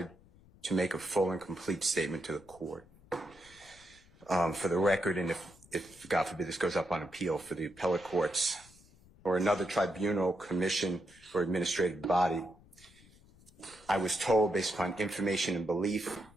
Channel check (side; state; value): left; noise; rumble, 26 dB below the sound